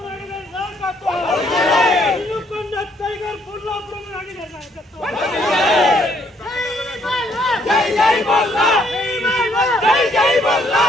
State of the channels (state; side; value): normal; both; correlation 0.68